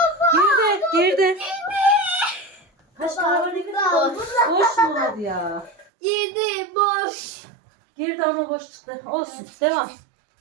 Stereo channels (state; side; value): drops out; left; at 5.9 s